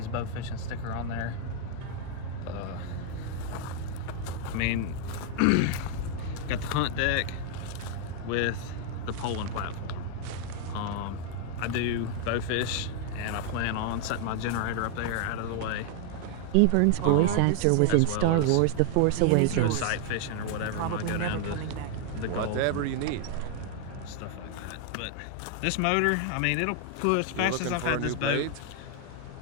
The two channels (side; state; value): both; different; correlation 0.00